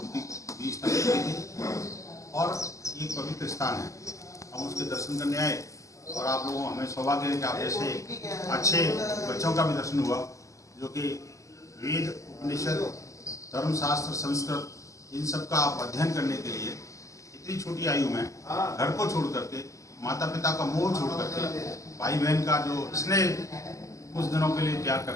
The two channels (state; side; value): late; right; 0.16 ms